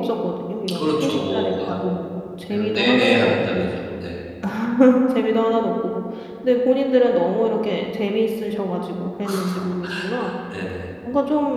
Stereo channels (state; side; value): identical; both; correlation 1.00